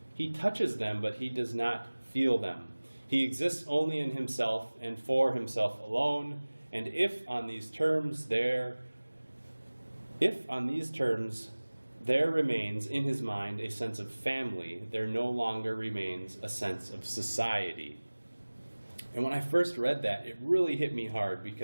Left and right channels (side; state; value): both; inverted; correlation -1.00